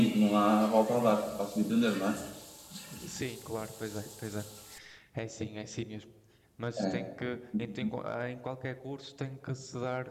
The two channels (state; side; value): identical; both; correlation 1.00